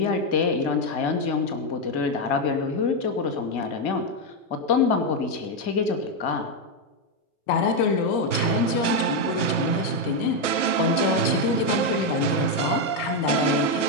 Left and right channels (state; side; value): late; right; 1.0 ms